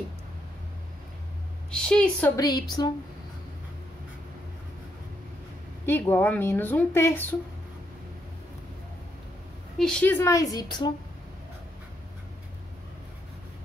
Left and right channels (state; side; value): normal; both; correlation 0.77